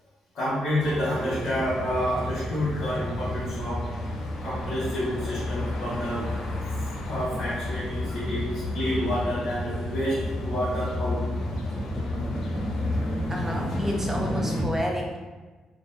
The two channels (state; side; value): normal; both; correlation 0.81